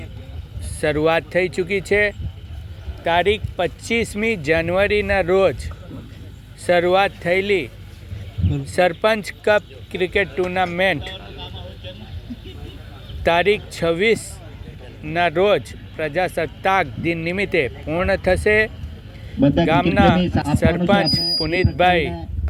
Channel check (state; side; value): identical; both; correlation 1.00